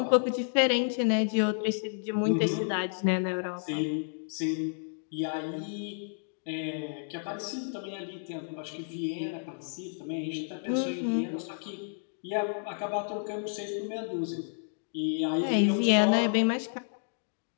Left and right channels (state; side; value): silent; right; digital silence